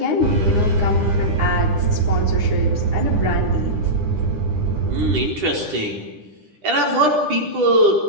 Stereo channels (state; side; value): late; left; 9.9 ms